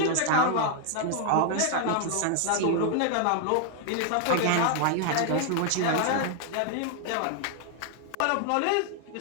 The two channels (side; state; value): both; different; correlation 0.00